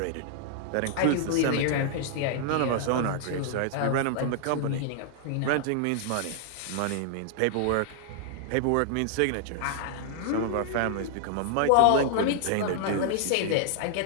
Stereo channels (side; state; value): both; different; correlation 0.00